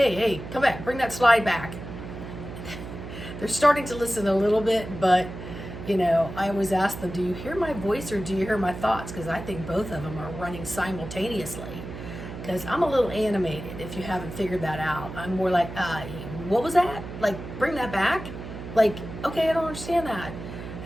come back, bring that slide back. They're starting to listen a little bit, but I always ask them, do you hear my voice or do you hear my thoughts? Because I think both of them are running simultaneously. because I'm a little animated, if you haven't figured that out. I'm more like, what was that? Like, bring that back? Like, okay, I don't understand that.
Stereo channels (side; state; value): right; noise; hum, 10 dB below the sound